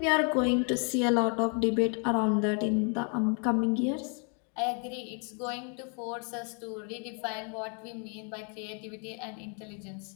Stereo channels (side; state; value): right; quieter; 39.5 dB